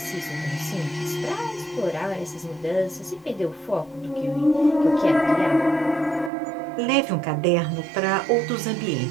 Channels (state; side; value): drops out; left; at 6.3 s